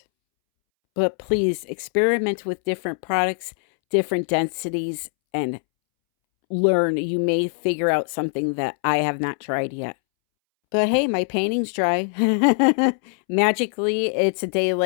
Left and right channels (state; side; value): silent; right; 64 dB below the other